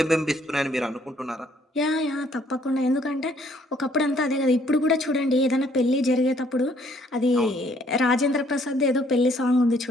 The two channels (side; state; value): both; normal; correlation 0.64